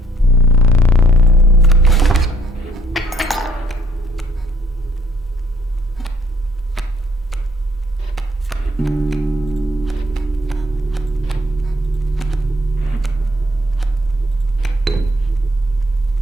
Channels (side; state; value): both; normal; correlation 0.63